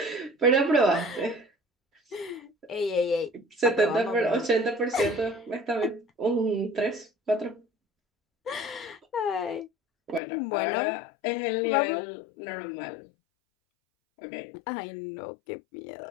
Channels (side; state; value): right; drops out; at 10.2 s